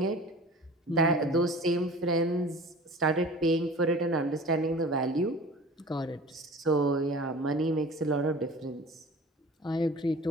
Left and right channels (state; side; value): normal; both; correlation 0.41